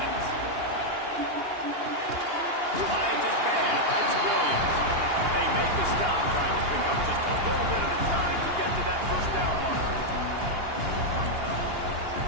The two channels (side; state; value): left; late; 2.8 ms